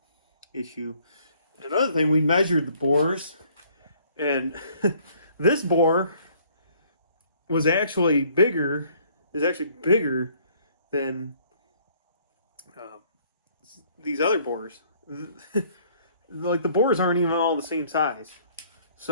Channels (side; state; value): both; inverted; correlation -0.61